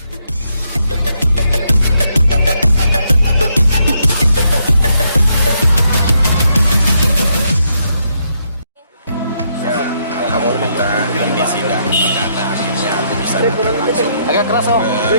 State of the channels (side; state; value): both; inverted; correlation -0.76